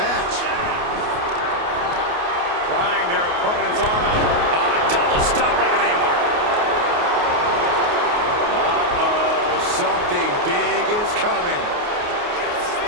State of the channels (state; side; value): late; left; 28 ms